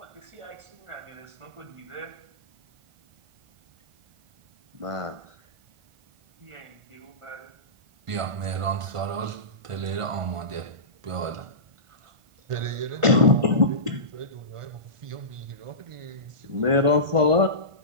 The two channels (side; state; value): left; late; 1.5 ms